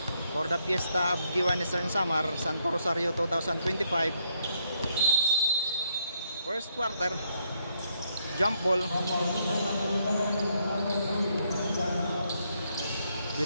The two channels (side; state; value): both; inverted; correlation -0.75